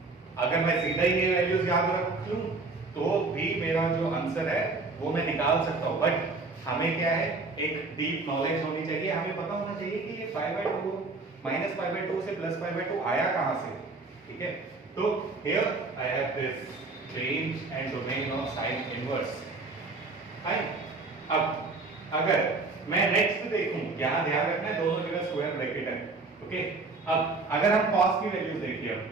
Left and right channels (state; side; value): quieter; left; 3.7 dB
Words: अगर मैं सीधा ही ये वैल्यूज याद रख लूं तो भी मेरा जो आंसर है वो मैं निकाल सकता हूं। बट हमें क्या है, एक डीप नॉलेज होनी चाहिए, हमें पता होना चाहिए कि ये π/2 -π/2 से +π/2 आया कहां से। ठीक है, तो here I have this range and domain of sine inverse. अब अगर मैं नेक्स्ट देखूं, यहां ध्यान रखना है दोनों जगह स्क्वायर ब्रैकेट है। ओके, अब अगर हम cos की वैल्यूज देखिए,